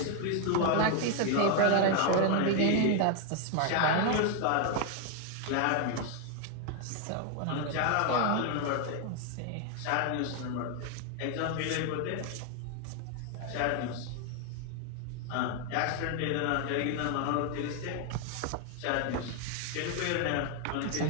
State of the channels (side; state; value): both; different; correlation 0.00